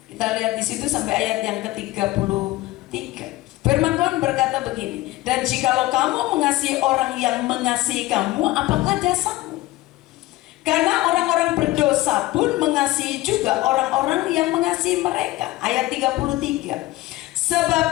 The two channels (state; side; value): quieter; right; 18.4 dB